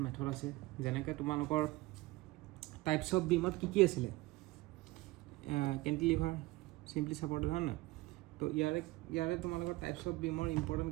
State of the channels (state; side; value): quieter; left; 20.4 dB